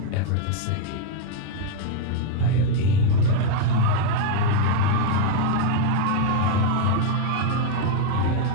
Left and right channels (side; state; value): both; different; correlation 0.01